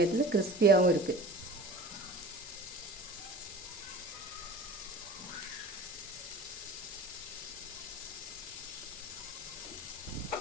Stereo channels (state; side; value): normal; both; correlation 0.39